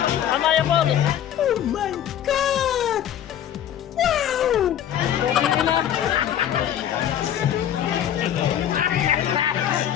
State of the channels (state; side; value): quieter; right; 10.4 dB